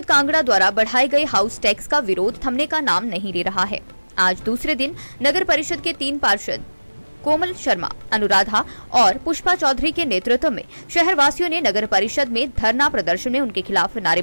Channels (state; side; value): inverted; both; correlation -1.00